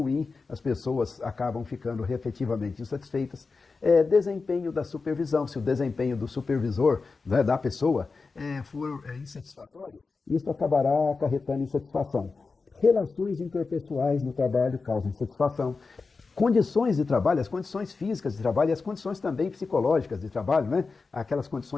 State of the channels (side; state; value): right; quieter; 4.3 dB